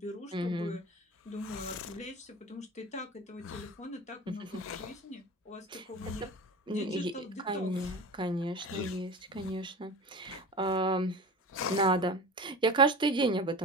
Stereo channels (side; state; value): both; normal; correlation 0.32